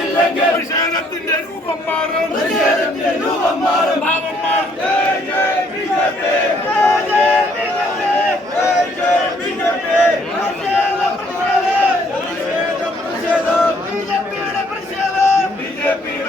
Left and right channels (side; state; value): both; normal; correlation 0.66